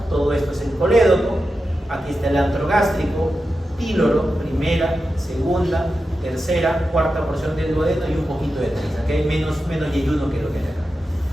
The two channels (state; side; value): normal; both; correlation 0.91